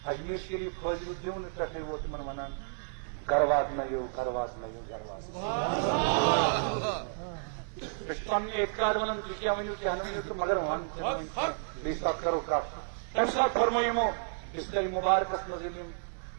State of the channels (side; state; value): left; silent; 57 dB below the other